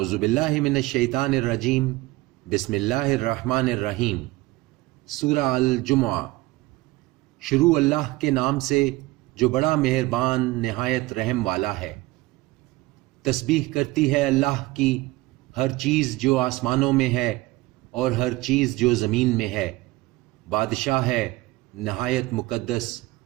باللہ من الشیطان الرجیم، بسم اللہ الرحمن الرحیم۔ سورہ الجمعہ۔ شروع اللہ کے نام سے جو بڑا مہربان نہایت رحم والا ہے۔ تسبیح کرتی ہے اللہ کی ہر چیز جو آسمانوں میں ہے اور ہر چیز جو زمین میں ہے۔ بادشاہ ہے نہایت مقدس،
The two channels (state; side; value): quieter; left; 20.2 dB